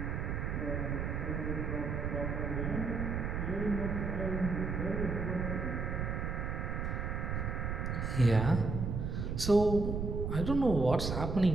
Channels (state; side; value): noise; right; rumble, 1 dB below the sound